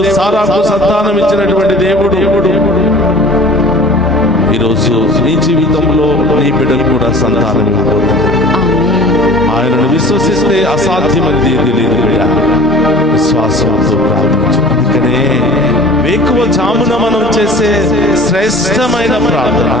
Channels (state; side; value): normal; both; correlation 0.44